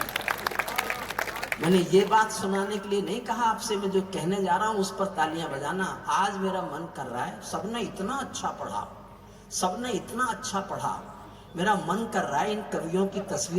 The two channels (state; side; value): identical; both; correlation 1.00